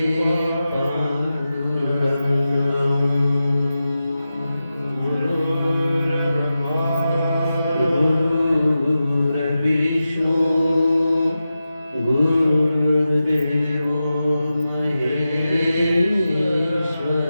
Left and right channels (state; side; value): inverted; both; correlation -0.92